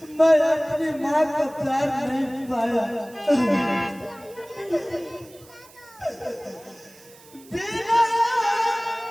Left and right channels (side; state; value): right; noise; hiss, 24 dB below the sound